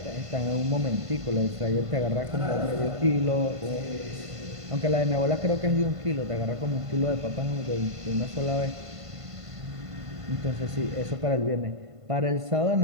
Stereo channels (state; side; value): late; left; 1.5 ms